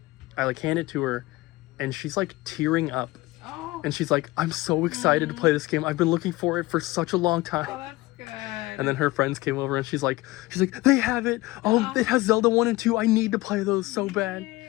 I like hand it to her and she's like tearing up. Oh, And she's like, I'm so excited to play this game. I've been looking for it for such a long time. oh, that's good. And then her friends came over and she's like, they have it. Oh, it has Zelda 1 and 2. I need to play those so bad. Yeah.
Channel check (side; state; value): right; quieter; 19.5 dB